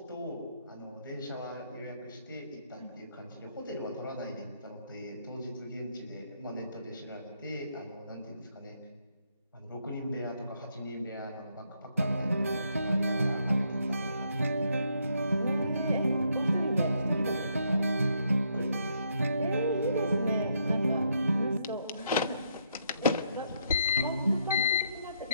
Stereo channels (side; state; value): both; inverted; correlation -0.74